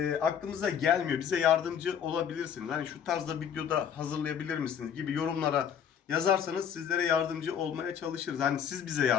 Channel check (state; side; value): quieter; right; 8.2 dB